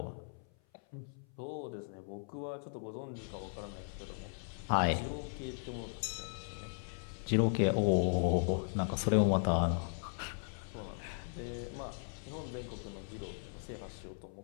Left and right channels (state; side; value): silent; right; 53 dB below the other